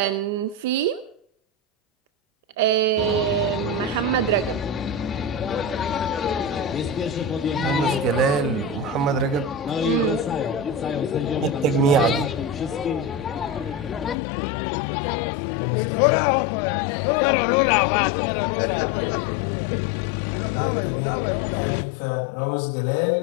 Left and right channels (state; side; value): drops out; right; at 14.2 s